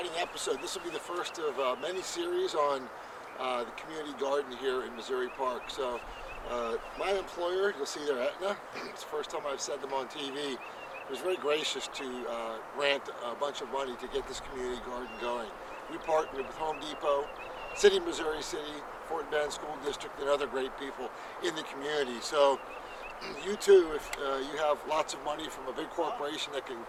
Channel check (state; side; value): identical; both; correlation 1.00